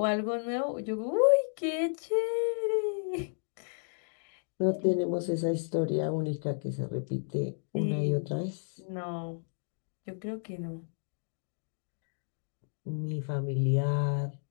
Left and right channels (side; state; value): right; silent; digital silence